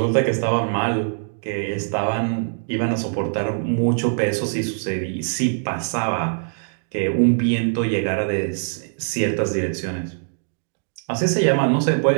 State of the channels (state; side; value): silent; left; digital silence